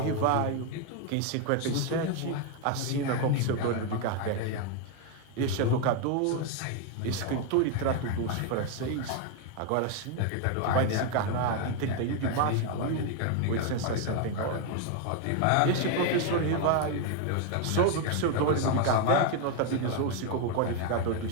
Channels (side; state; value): both; different; correlation 0.01